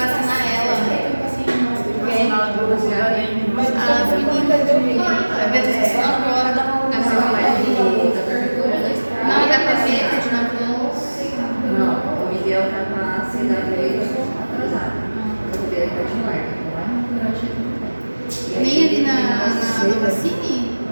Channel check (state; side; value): inverted; both; correlation -1.00